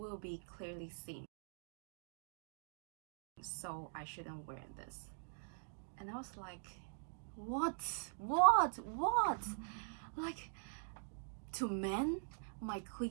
be clearly seen. So I shouldn't wear this. And I was like, what? Like, to men, my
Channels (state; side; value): silent; left; digital silence